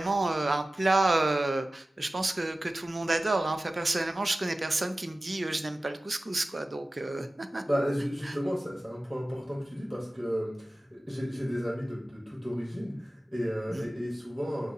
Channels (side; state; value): both; normal; correlation 0.96